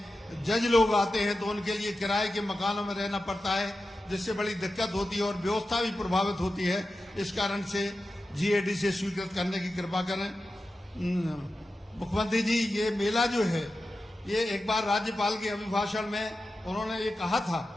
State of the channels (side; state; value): both; normal; correlation 0.92